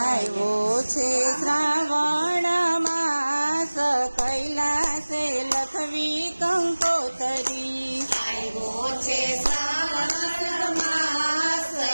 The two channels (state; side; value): inverted; both; correlation -1.00